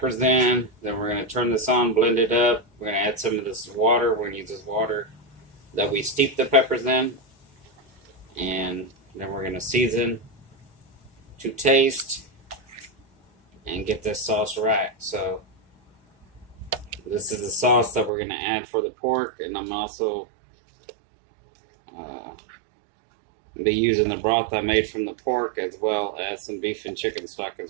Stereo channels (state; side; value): drops out; left; at 18.1 s